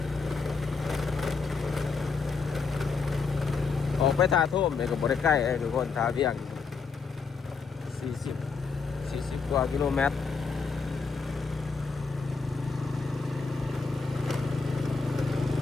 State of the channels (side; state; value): right; quieter; 4.8 dB